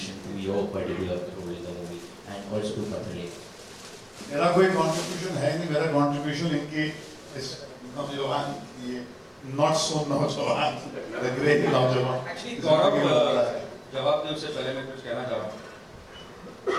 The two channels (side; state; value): both; identical; correlation 1.00